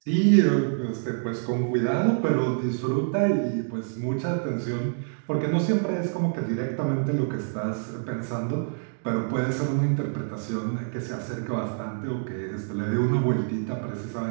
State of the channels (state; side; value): silent; left; digital silence